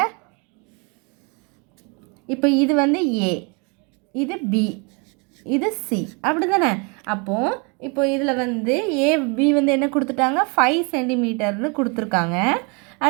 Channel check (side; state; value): left; quieter; 32.7 dB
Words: இப்போ இது வந்து ஏ, இது பி, இது சி, அப்படி தானே. அப்போது இப்போ இதில் வந்து ஏ பி வந்து என்ன கொடுத்துட்டாங்க, 5 சென்டிமீட்டர்னு கொடுத்துருக்காங்க.